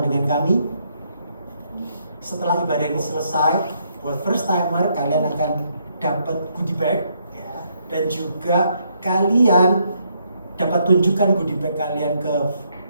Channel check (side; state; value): both; inverted; correlation -0.73